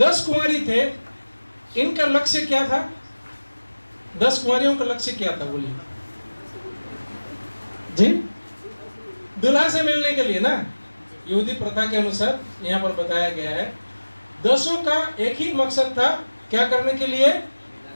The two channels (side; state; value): both; inverted; correlation -1.00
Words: कुमारी थे, इनका लक्ष्य क्या था? 10 कुमारियों का लक्ष्य क्या था बोलिए जी? दुल्हा से मिलने के लिए ना, यहूदी प्रथा के अनुसार यहाँ पर बताया गया है। 10 का एक ही मकसद था, क्या करने के लिए?